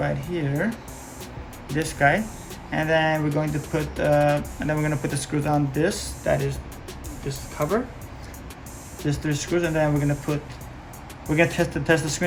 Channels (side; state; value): both; identical; correlation 1.00